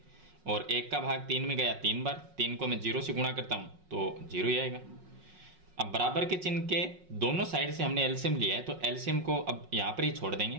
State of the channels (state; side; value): late; left; 5.4 ms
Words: और 1 का भाग 3 में गया 3 बार, 3 को मैं 0 से गुणा करता हूँ तो 0 ही आएगा। अब बराबर के चिन्ह के दोनों साइड से हमने एलसीएम लिया है तो एलसीएम को अब यहाँ पर ही छोड़